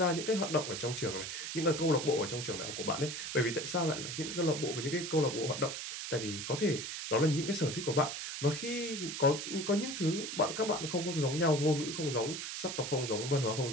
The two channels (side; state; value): right; noise; hiss, 5 dB below the sound